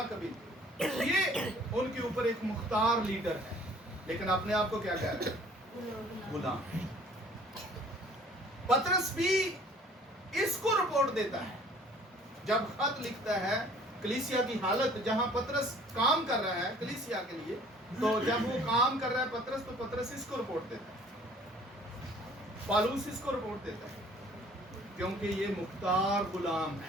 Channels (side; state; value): both; normal; correlation 0.53